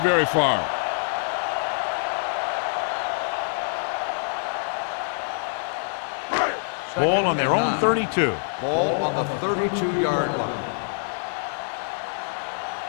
very far. Ball on their own 32. Ball on the 32-yard line.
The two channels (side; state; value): right; silent; digital silence